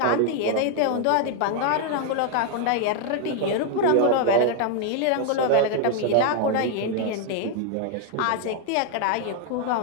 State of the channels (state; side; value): different; both; correlation 0.00